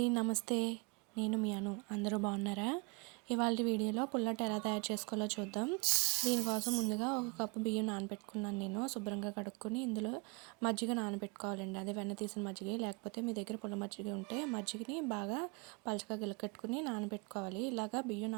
నమస్తే. నేను మీ అను. అందరూ బాగున్నారా? ఇవాళ వీడియోలో పుల్లట్ ఎలా తయారు చేసుకోవాలో చూద్దాం. దీనికోసం ముందుగా ఒక కప్పు బియ్యం నానబెట్టుకున్నాను. నేను శుభ్రంగా కడుక్కొని ఇందులో మజ్జిగ నానబెట్టుకోవాలండి. అదే వెన్న తీసిన మజ్జిగ, లేకపోతే మీ దగ్గర పుల్ల మజ్జిగ ఉంటే మజ్జిగని బాగా పలచగా గిలకట్టుకుని నానబెట్టుకోవాలి. ఇలాగా బియ్యం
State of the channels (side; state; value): left; quieter; 29.2 dB